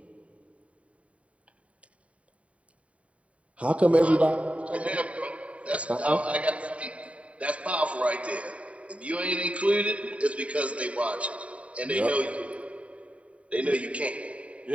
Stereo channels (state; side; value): late; left; 0.065 ms